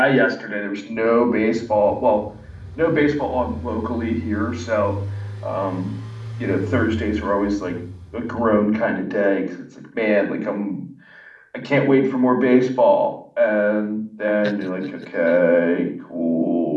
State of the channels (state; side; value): identical; both; correlation 1.00